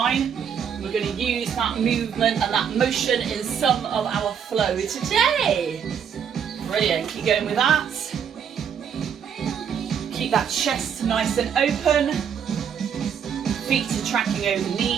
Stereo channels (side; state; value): left; quieter; 7.8 dB